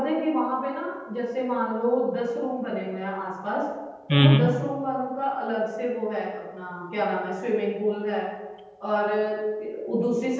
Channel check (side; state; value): both; identical; correlation 1.00